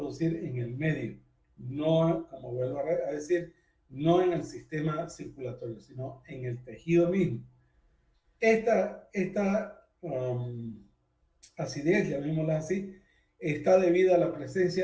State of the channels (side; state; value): both; identical; correlation 1.00